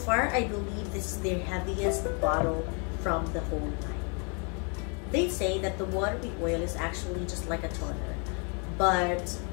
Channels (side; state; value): right; quieter; 36.8 dB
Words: I believe this is their heaviest bottle from the whole line. They say that the Watery Oil is actually just like a toner, but